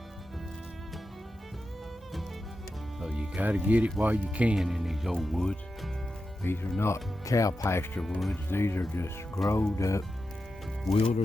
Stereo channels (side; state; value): both; normal; correlation 0.90